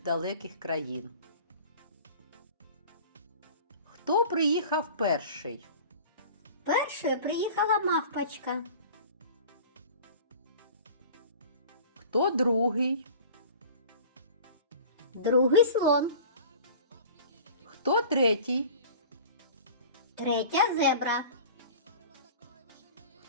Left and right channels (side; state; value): both; inverted; correlation -0.41